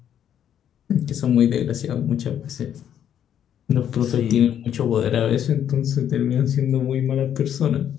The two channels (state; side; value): quieter; right; 9.7 dB